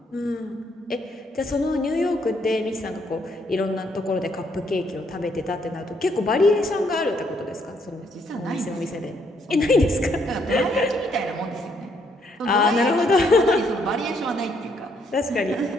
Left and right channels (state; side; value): normal; both; correlation 0.71